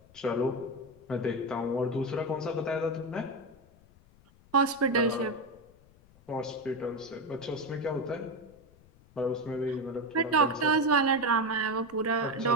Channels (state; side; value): noise; left; rumble, 27 dB below the sound